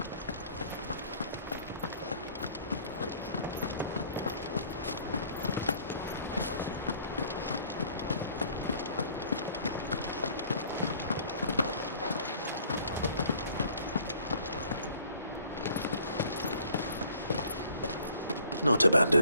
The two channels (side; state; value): both; inverted; correlation -0.56